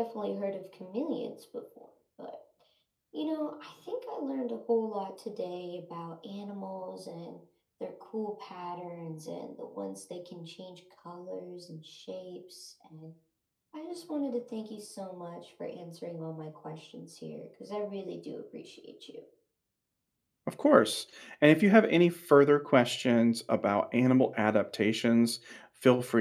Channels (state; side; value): identical; both; correlation 1.00